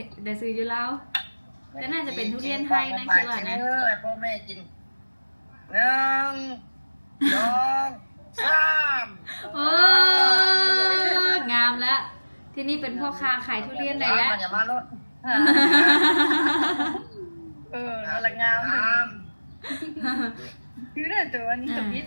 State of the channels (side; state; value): both; inverted; correlation -1.00